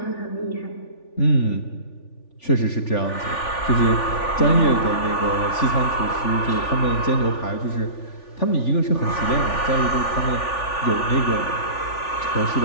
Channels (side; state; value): right; late; 3.4 ms